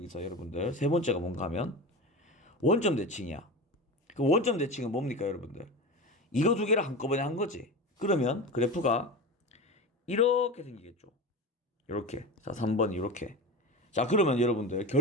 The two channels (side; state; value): both; normal; correlation 0.28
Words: 여러분들 세 번째가 뭔가 하면 원점 대칭이야. 그 원점 대칭은 뭡니까, 여러분들? 이거 두 개를 한꺼번에 한 거지. 그러면 그래프가 이렇게 생기겠죠. 이렇게. 자, 3번이 이렇게. 자, 그러면 여러분들